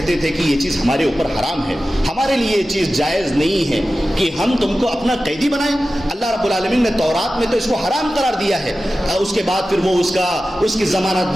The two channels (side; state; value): both; normal; correlation 0.94